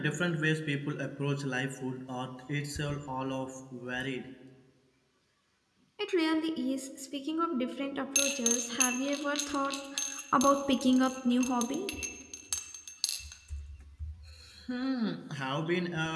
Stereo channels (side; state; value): both; identical; correlation 1.00